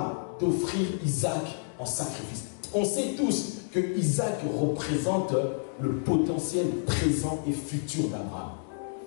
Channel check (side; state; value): right; silent; digital silence